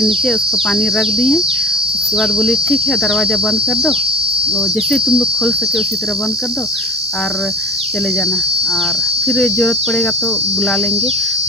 नीचे उसको पानी रख दिए। उसके बाद बोली ठीक है दरवाज़ा बंद कर दो, और जैसे तुम लोग खोल सके उसी तरह बंद कर दो और चले जाना, और फिर ज़रूरत पड़ेगा तो बुला लेंगे।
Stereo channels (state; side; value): normal; both; correlation 0.40